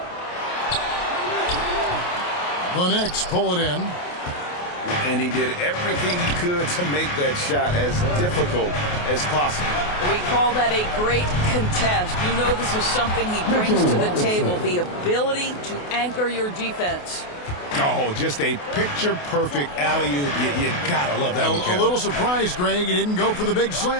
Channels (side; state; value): right; late; 28 ms